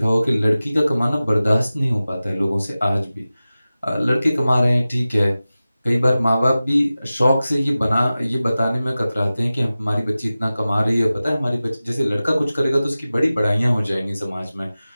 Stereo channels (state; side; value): inverted; both; correlation -0.96